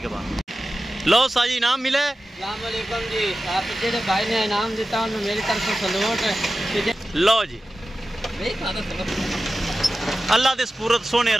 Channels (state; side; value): normal; both; correlation 0.94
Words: लो साजी इनाम मिले। अस्सलाम वालेकुम जी। आप जेडे भाई ने इनाम दिता उन्हें मेरी तरफ से सलूट। लो जी, अल्लाह दे सुपुर्द, सोने